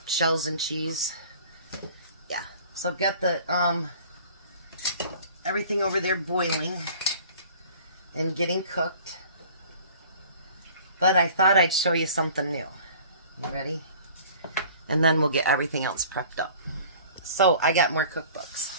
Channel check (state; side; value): inverted; both; correlation -0.48